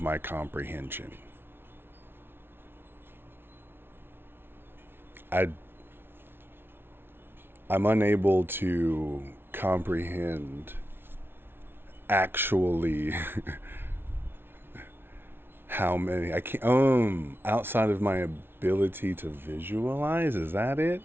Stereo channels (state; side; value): late; left; 0.11 ms